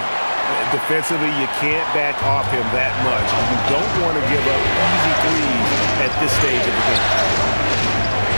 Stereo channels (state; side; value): inverted; both; correlation -1.00